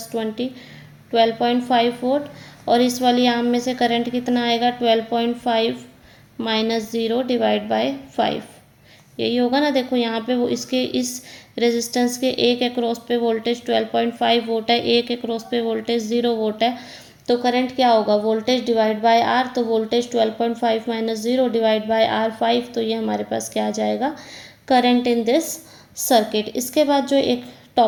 20 12.5 वोल्ट। और इस वाली आर्म में से करंट कितना आएगा, 12.5 माइनस 0 डिवाइड बाय 5, यही होगा ना। देखो यहाँ पे वो इसके इस रेजिस्टेंस के एक एक्रॉस पे वोल्टेज 12.5 वोल्ट है, एक एक्रॉस पे वोल्टेज 0 वोल्ट है। तो करंट क्या होगा, वोल्टेज डिवाइड बाय आर। तो voltage 12.5 minus 0 divide by R 5, तो ये हमारे पास क्या आ जाएगा, करंट इन दिस सर्किट। इसके बाद जो एक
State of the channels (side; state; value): both; identical; correlation 1.00